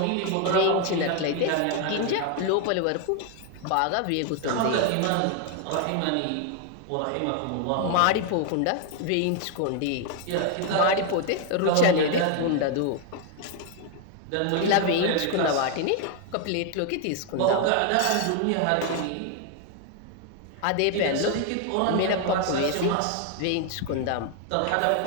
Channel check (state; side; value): different; both; correlation 0.00